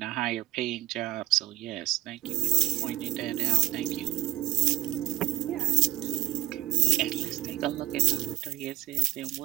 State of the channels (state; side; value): quieter; left; 16.8 dB